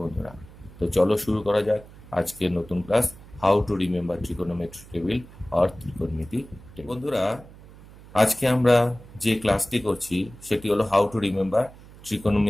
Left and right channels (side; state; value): right; noise; hum, 20 dB below the sound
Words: বন্ধুরা। তো চলো শুরু করা যাক আজকের নতুন class, how to remember trigonometry table or ত্রিকোণমিতি টেবিল। বন্ধুরা, আজকে আমরা যে ক্লাসটি করছি সেটি হলো হাউ টু রিমেম্বার